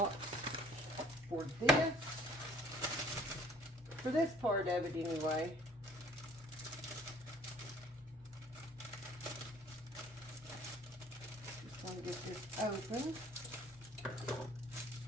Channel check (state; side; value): normal; both; correlation 0.54